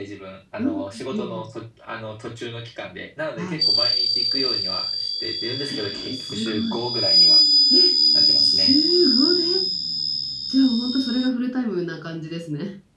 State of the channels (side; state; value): both; identical; correlation 1.00